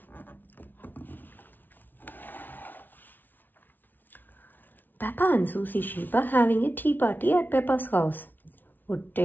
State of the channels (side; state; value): right; late; 0.088 ms